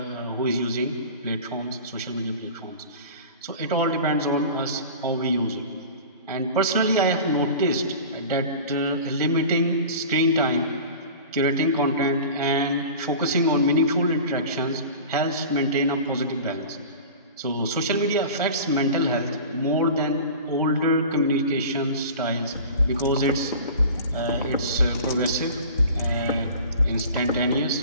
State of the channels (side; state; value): both; inverted; correlation -0.38